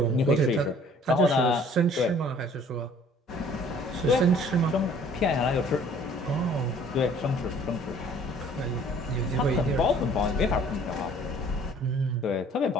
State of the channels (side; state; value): both; normal; correlation 0.54